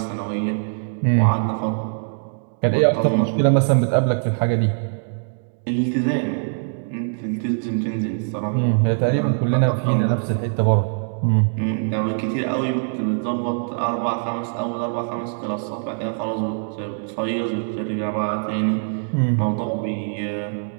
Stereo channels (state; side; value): silent; left; digital silence